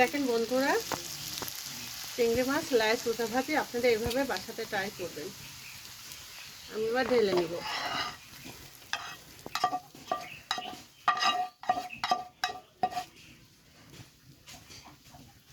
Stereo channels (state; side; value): identical; both; correlation 1.00